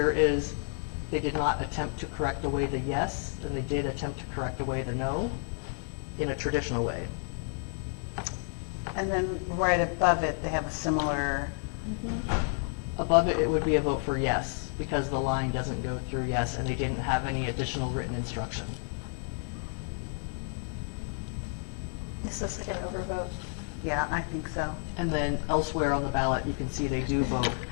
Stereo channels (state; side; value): silent; right; 57 dB below the other